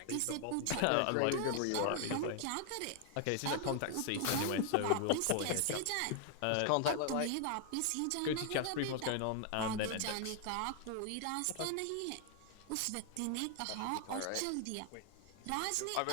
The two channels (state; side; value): different; both; correlation 0.00